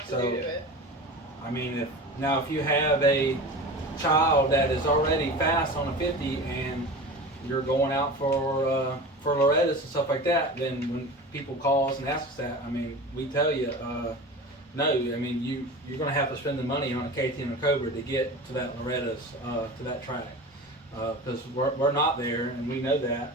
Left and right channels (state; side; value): normal; both; correlation 0.33